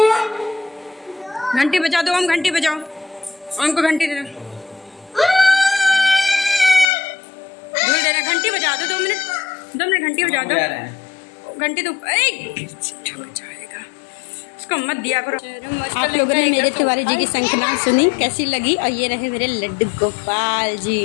घंटी बजा दो ओम, घंटी बजाओ। ओम को घंटी दे दो। धूल दे रहा, घंटी बजा दो। 2 मिनट घंटी बजा दो। घंटी तो जाएगा, उसको मत दिया करो। आप लोगों ने मेरे तिवारी जी की शंखनाद सुनी, कैसी लगी? और ये रहे मेरे लड्डू गोपाल जी,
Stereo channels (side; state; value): right; drops out; at 6.9 s